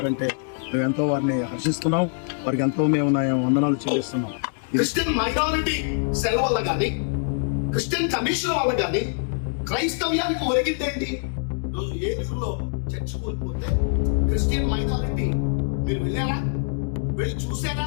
మేము ఎంతో వారిని హర్షిస్తున్నాం. వారికి ఎంతో మేము వందనాలు చెల్లిస్తున్నాం. క్రిస్టియన్ మైనారిటీ సెల్ వల్ల కానీ, క్రిస్టియన్ కమిషన్ వల్ల కానీ క్రైస్తవ్యానికి ఒరిగిందేంటి? రోజు ఏలూరులో చర్చ్ కోల్పోతే క్రిస్టియన్ మైనారిటీ మీరు వెళ్ళారా? వెళ్ళి చూసారా?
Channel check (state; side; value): silent; right; digital silence